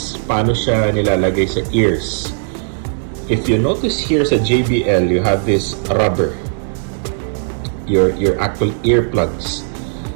paano siya nilalagay sa ears. If you notice here sa JBL, you have this rubber, your actual earplugs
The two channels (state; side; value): silent; left; 63 dB below the other